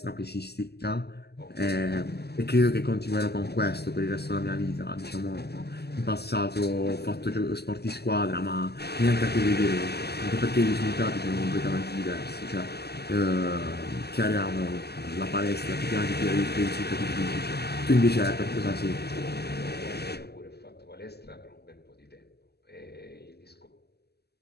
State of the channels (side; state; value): right; late; 0.47 ms